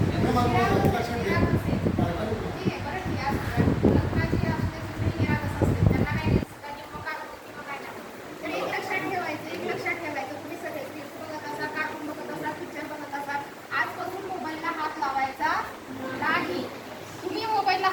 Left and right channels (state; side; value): identical; both; correlation 1.00